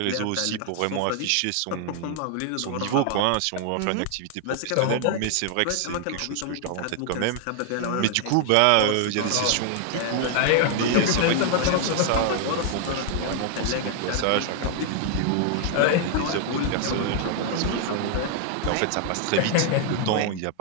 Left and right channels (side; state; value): both; different; correlation 0.00